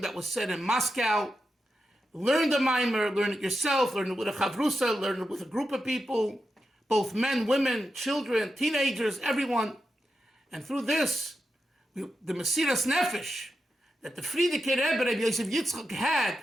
that was said in Moscow. Learn the Maamar, learn it yourself, learn it with a chavrusa, learn it with a group of people, both men, women, children, teenagers, everyone. And through this, the Mesiras Nefesh that the Frierdiker Rebbe, Rabbi Yosef Yitzchak, had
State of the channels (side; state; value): both; normal; correlation 0.89